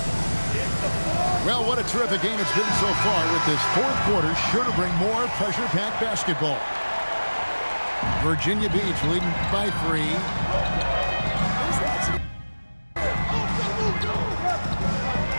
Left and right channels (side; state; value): both; inverted; correlation -1.00